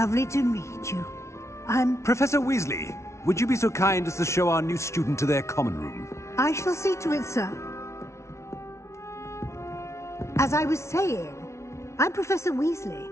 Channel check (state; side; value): late; right; 0.13 ms